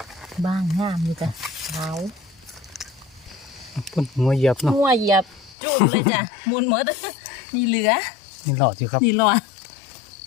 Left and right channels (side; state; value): right; drops out; at 5.6 s